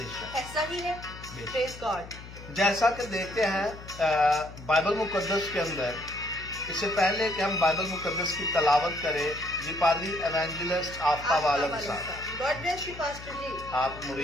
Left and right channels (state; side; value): noise; left; hum, 15 dB below the sound